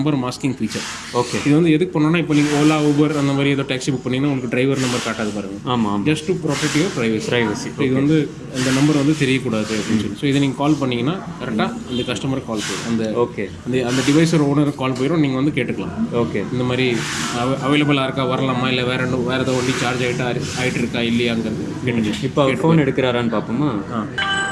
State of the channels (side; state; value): both; identical; correlation 1.00